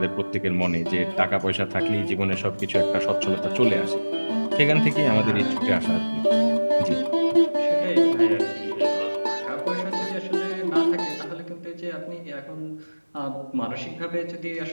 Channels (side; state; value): both; inverted; correlation -1.00